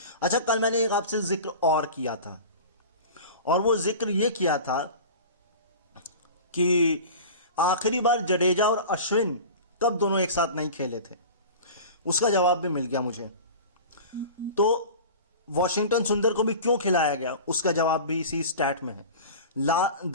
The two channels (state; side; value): inverted; both; correlation -0.35